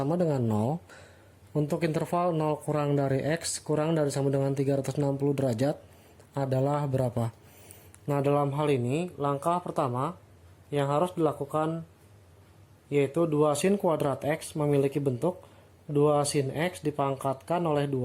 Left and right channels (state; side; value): identical; both; correlation 1.00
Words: dengan 0 untuk interval 0 kurang dari X kurang dari sama dengan 360 derajat adalah berapa? Nah, dalam hal ini langkah pertama yang harus dilakukan yaitu 2 sin kuadrat X memiliki bentuk 2 sin X dipangkatkan oleh